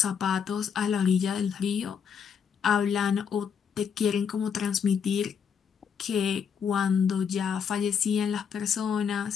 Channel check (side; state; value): right; quieter; 7.1 dB